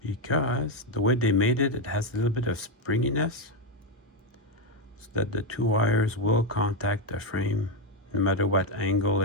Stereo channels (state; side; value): normal; both; correlation 0.05